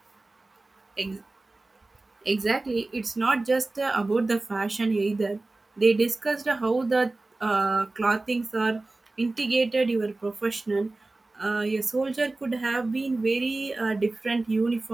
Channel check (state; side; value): quieter; left; 3.1 dB